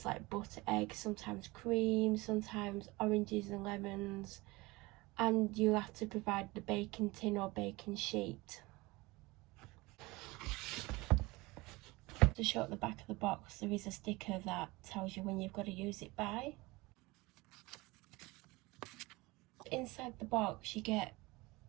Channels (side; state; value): left; quieter; 22.5 dB